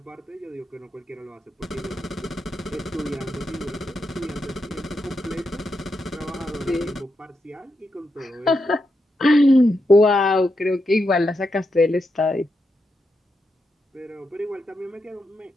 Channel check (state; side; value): normal; both; correlation 0.85